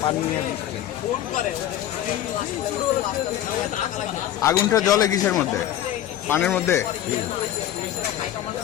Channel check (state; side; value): quieter; right; 12.0 dB